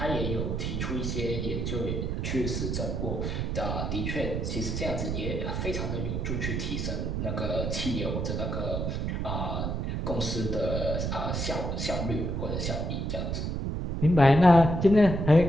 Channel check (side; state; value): right; noise; rumble, 1 dB below the sound